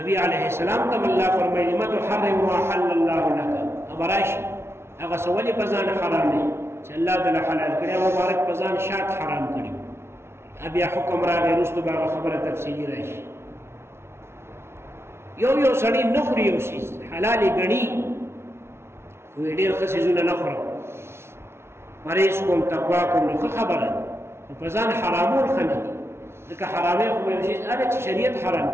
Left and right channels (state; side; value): late; left; 0.12 ms